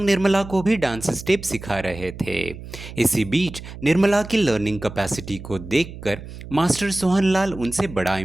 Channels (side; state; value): right; noise; hum, 13 dB below the sound